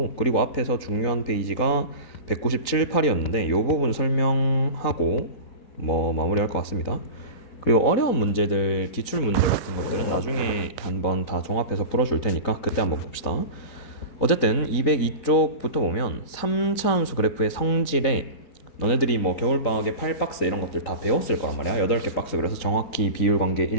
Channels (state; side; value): late; right; 4.0 ms